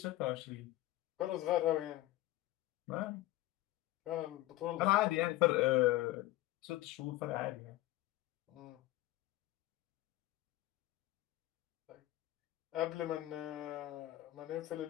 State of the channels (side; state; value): right; quieter; 16.5 dB